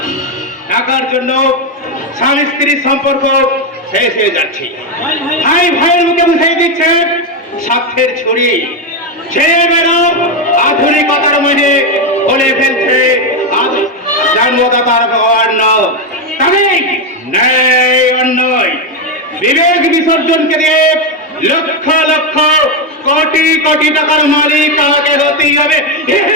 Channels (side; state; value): both; normal; correlation 0.07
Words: টাকার জন্য স্বামী স্ত্রীর সম্পর্ক শেষ হয়ে যাচ্ছে। ভাই ভাইয়ের মুখে বুঝিয়ে দিচ্ছে স্বার্থের ছড়ি। ছেলেমেয়েরা আধুনিকতার মধ্যে বলে ফেলছে জন্মদাতার অন্ন, তবে ন্যায় অন্যায় বিবেক বিসর্জনকে দিয়ে লক্ষ লক্ষ কোটি কোটি টাকার মালিক আমাকে হতেই হবে।